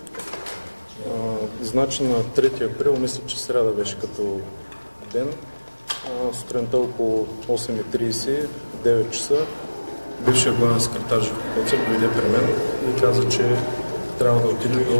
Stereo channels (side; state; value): both; inverted; correlation -1.00